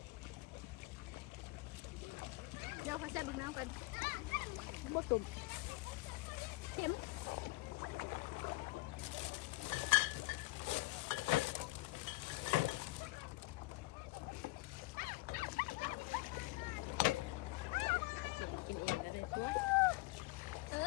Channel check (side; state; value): right; quieter; 22.1 dB